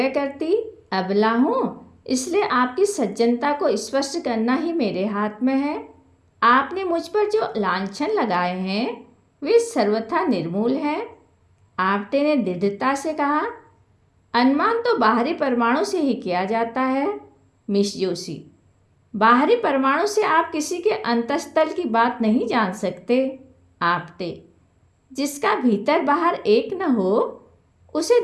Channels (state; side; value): identical; both; correlation 1.00